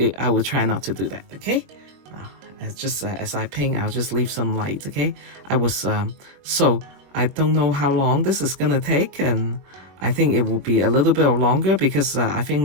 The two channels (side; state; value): left; late; 22 ms